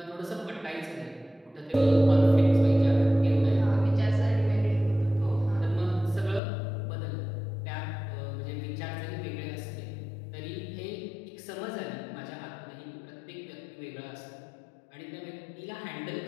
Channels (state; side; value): drops out; right; at 6.4 s